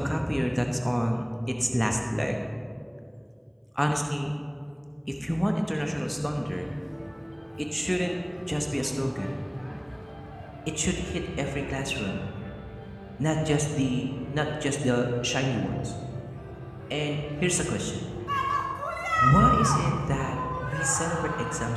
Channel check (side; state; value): both; identical; correlation 1.00